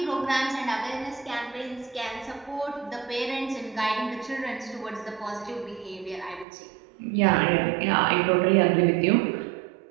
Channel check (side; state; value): left; drops out; at 6.5 s